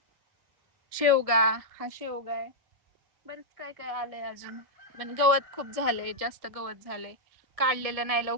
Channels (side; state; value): left; late; 1.7 ms